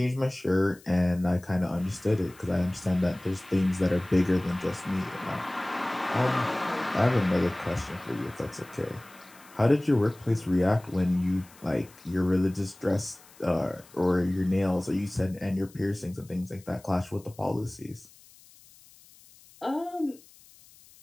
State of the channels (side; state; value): left; noise; hiss, 25 dB below the sound